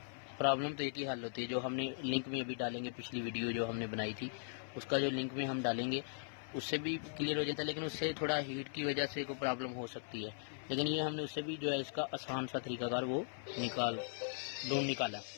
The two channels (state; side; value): silent; right; 52 dB below the other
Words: प्रॉब्लम तो एक ही हल होती है। जो हमने लिंक में अभी डालेंगे, पिछली वीडियो जो हमने बनाई थी उसका जो लिंक में हम डालेंगे उससे भी क्लियर हो जाता है, लेकिन उससे थोड़ा हीट की वजह से कोई प्रॉब्लम हो सकती है। लेकिन ये हमने उससे भी जो है इसका आसान सा तरीकाकार वो ढूंढ निकाला।